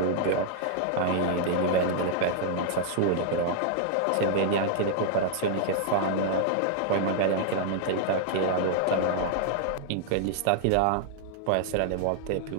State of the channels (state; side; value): different; both; correlation 0.00